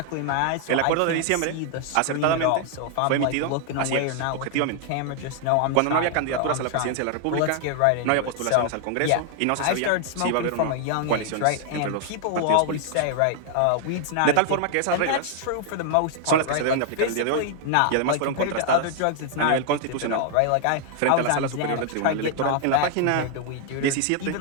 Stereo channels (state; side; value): different; both; correlation 0.00